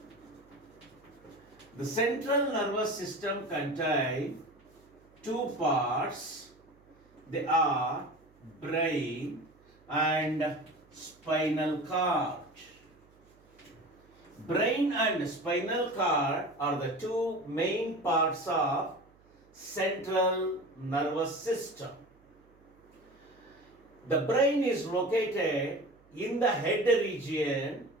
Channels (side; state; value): right; noise; hum, 30 dB below the sound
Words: The central nervous system contains two parts. They are brain and spinal cord. Brain and spinal cord are the two main parts of central nervous system. The brain is located in the head region.